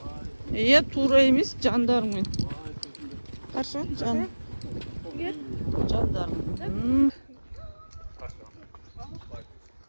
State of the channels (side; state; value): both; inverted; correlation -1.00